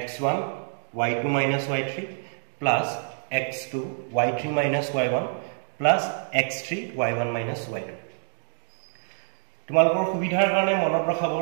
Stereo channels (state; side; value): silent; left; digital silence